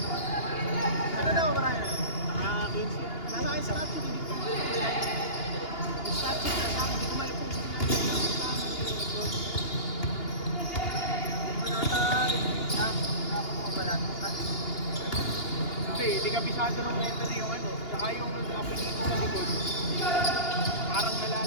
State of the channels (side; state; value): right; late; 2.8 ms